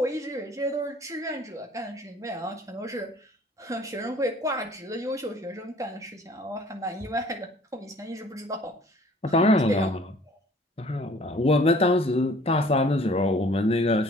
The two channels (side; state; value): both; normal; correlation 0.53